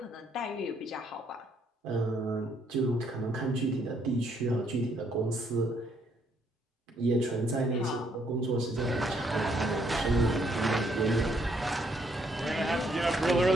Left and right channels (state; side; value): normal; both; correlation 0.70